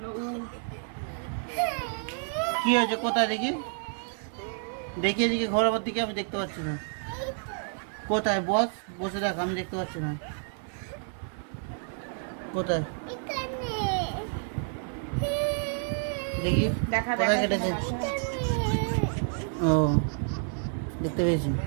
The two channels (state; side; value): silent; left; 58 dB below the other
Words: কি হয়েছে কোথায় দেখি? দেখি এদিকে ঘোরার দিকে, আমি দেখতে পাচ্ছি না। কোথায়? বস, বসে দেখ, আমি দেখতে পাচ্ছি না। কোথায় দেখি, কোথায় কেটেছে? ও, দেখতে পেয়েছি।